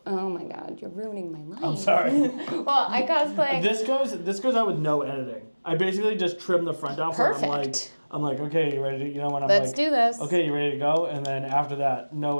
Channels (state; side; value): inverted; both; correlation -1.00